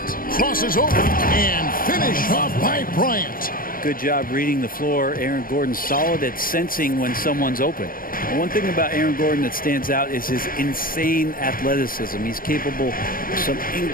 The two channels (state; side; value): late; right; 0.41 ms